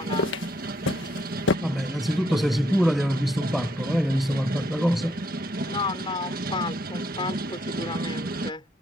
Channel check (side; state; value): both; normal; correlation 0.73